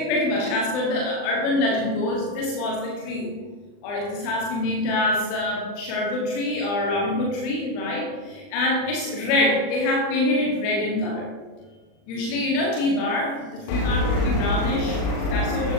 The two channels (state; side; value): late; right; 39 ms